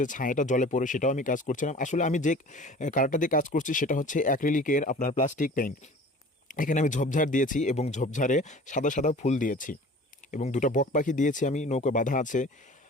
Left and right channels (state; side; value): normal; both; correlation 0.43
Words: ছায়াটা জলে পড়ে সেটাও আমি কাজ করছিলাম। আসলে আমি যে কালারটা দিয়ে কাজ করছি সেটা হচ্ছে অ্যাক্রিলিকের আপনার প্লাস্টিক পেইন্ট। এখানে আমি ঝোপঝাড় দিয়েছি এবং ঝোপঝাড়ে সাদা সাদা ফুল দিয়েছি এবং দুটো বক পাখি দিয়েছি, আমি নৌকা বাঁধা আছে।